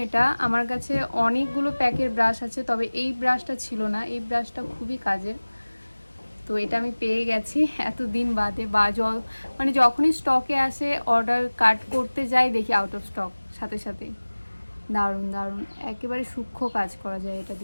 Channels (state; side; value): inverted; both; correlation -1.00